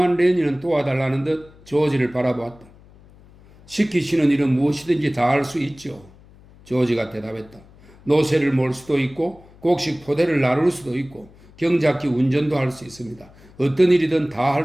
레니는 도와달라는 듯 조지를 바라보았다. 시키시는 일은 무엇이든지 다 할 수 있죠. 조지가 대답했다. 노새를 몰 수도 있고 곡식 포대를 나눌 수도 있고 경작기 운전도 할 수 있습니다. 어떤 일이든 다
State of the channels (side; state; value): left; noise; hum, 25 dB below the sound